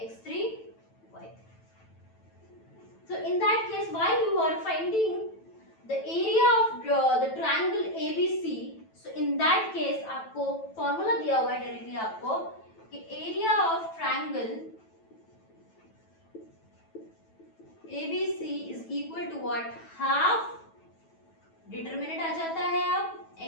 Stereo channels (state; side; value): late; right; 9.1 ms